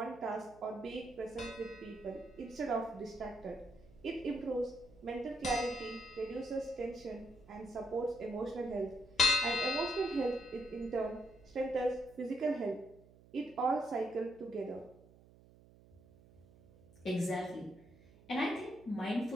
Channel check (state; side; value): noise; right; hum, 24 dB below the sound